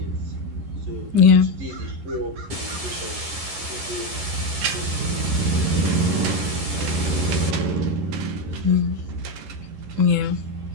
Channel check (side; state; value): left; late; 11 ms